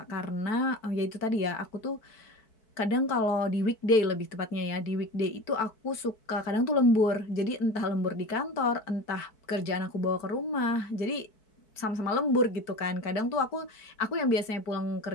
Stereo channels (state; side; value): late; right; 4.6 ms